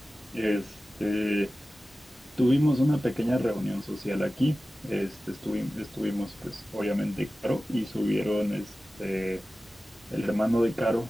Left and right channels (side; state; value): both; normal; correlation 0.95